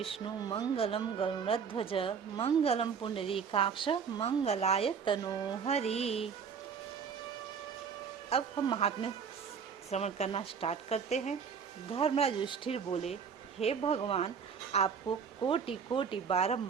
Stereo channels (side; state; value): left; quieter; 6.5 dB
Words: मंगलम गरुड़ध्वज मंगलम पुंडरीकाक्ष मंगलाय तनोहरि। अब हम महात्म्य श्रवण करना स्टार्ट करते हैं। धर्मराज युधिष्ठिर बोले, हे भगवान, आपको कोटि कोटि